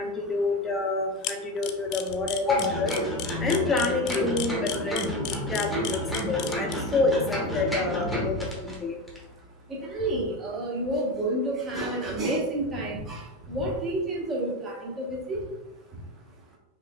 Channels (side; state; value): both; normal; correlation 0.22